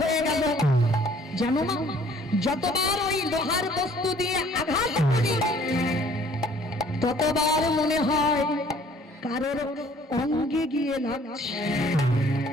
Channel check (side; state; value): both; normal; correlation 0.57